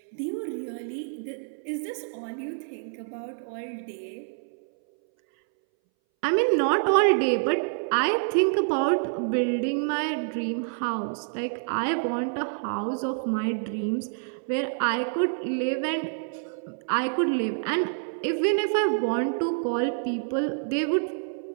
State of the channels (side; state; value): left; silent; 60 dB below the other